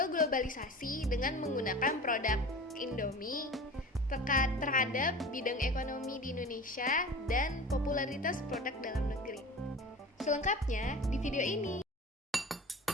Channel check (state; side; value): normal; both; correlation 0.36